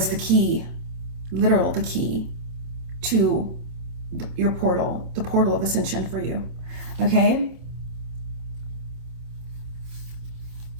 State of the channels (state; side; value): late; left; 26 ms